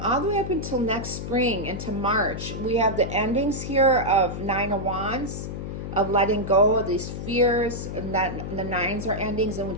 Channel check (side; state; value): left; noise; hum, 6 dB below the sound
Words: the way up until next spring, into March, we have the endings here of Nine of Wands, of letting go of these fears, and that the nines are endings, and